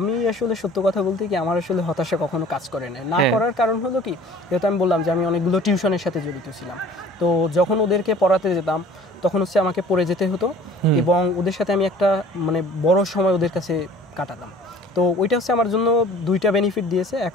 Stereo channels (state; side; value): normal; both; correlation 0.49